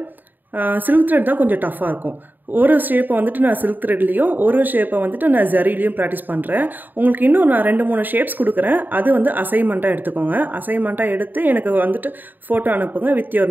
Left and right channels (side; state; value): left; late; 0.089 ms